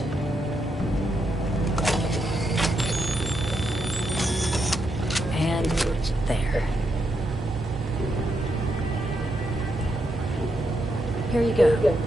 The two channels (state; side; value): normal; both; correlation 0.81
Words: And there. Here you go.